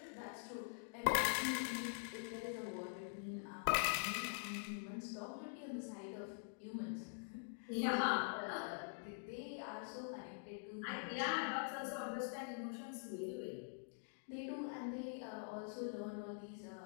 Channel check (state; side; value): silent; right; digital silence